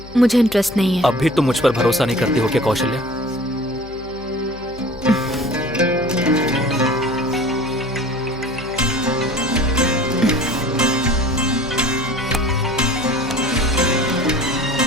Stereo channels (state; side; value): noise; left; hum, 18 dB below the sound